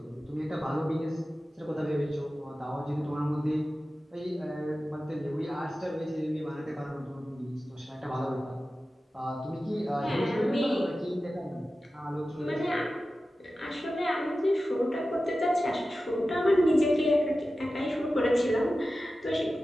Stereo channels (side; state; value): both; normal; correlation 0.94